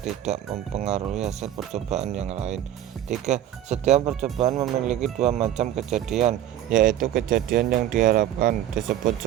mempengaruhi hasil percobaan yang lain. 3. Setiap percobaan memiliki dua macam kejadian, yaitu kejadian yang diharapkan disebut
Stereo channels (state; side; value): quieter; left; 11.7 dB